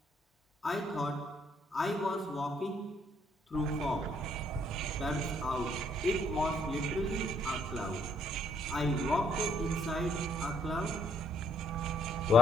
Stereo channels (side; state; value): both; normal; correlation 0.68